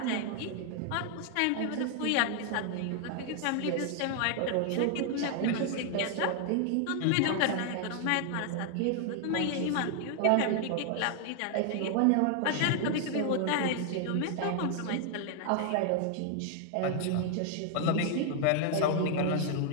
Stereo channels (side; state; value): both; different; correlation 0.00